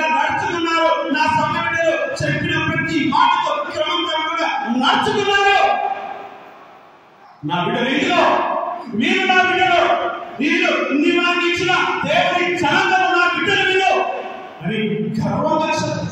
నడుచుకున్నారు, నా సంఘ బిడ్డలు చెప్పిన ప్రతి మాటతో క్రమంగా నడుచుకున్నారు. నా బిడ్డలు ఇందులో మీరు నా బిడ్డలు, వీళ్ళు నాకు ఇచ్చిన దేవుని జనాంగం నా బిడ్డలు వీళ్ళు అని గర్వంగా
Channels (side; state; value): both; identical; correlation 1.00